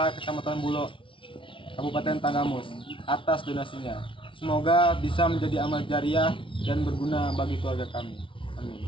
Kecamatan Bulo, Kabupaten Tanggamus, atas donasinya. Semoga bisa menjadi amal jariah dan berguna bagi keluarga kami.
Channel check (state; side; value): late; right; 0.25 ms